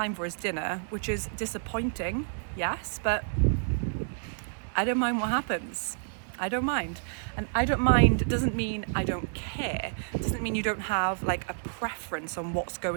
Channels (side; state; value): left; silent; 58 dB below the other